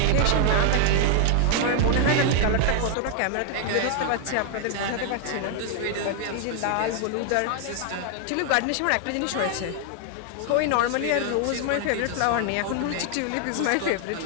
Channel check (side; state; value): both; different; correlation 0.00